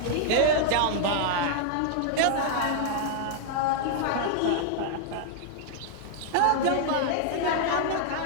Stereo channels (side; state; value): both; different; correlation -0.01